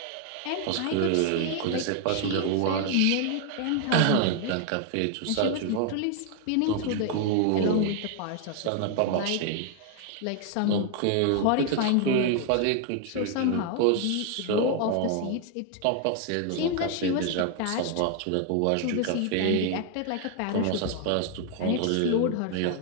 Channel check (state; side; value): different; both; correlation 0.00